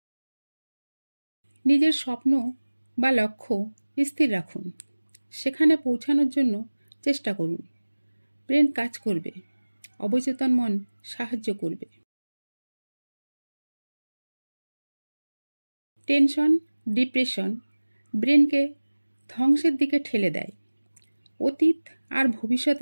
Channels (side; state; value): both; inverted; correlation -1.00